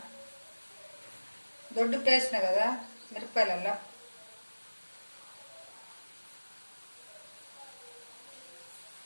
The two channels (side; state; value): both; inverted; correlation -1.00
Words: దొడ్డు పేసిన కదా మిరపకాయలల్లో.